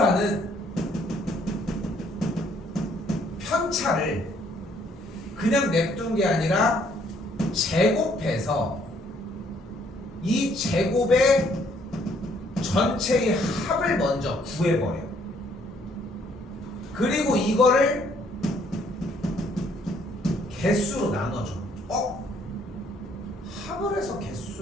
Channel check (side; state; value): both; normal; correlation 0.65